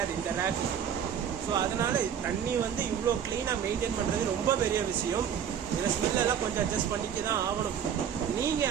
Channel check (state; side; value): quieter; left; 8.5 dB